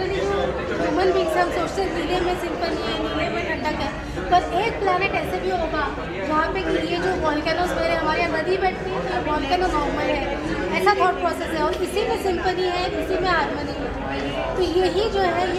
जो ह्यूमन बींग्स हम सोचते हैं नीले में सिंपल है, नीले में ठंडक है, पर एक प्लानट ऐसे भी होगा जहाँ पे कि ये जो वॉल्केनोस मेरे हमारे यहाँ नदी बैठती है, ये वॉल्केनो नॉर्मल है, ऐसा थॉट प्रोसेस है, और इसी में सिंपली है, इसी में हार्मनी है। तो यही जो है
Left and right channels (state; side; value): identical; both; correlation 1.00